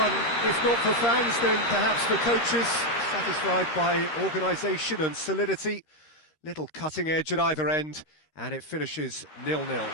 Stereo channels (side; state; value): right; late; 13 ms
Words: if not for fans, then perhaps for coaches, satisfied by organisation and solidity. Little cutting edge at either end, and it finishes 0-0.